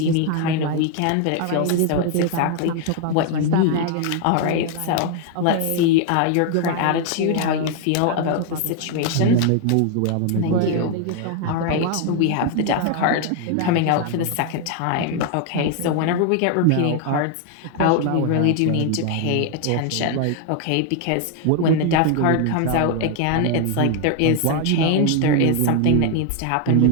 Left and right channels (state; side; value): different; both; correlation 0.00